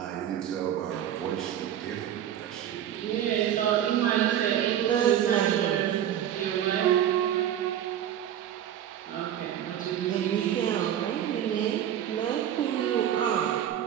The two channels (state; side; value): quieter; left; 10.6 dB